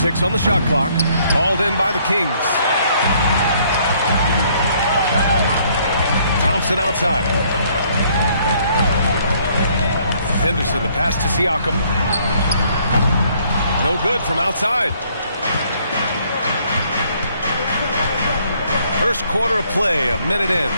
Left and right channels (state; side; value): inverted; both; correlation -0.65